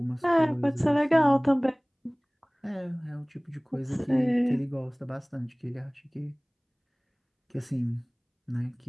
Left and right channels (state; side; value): identical; both; correlation 1.00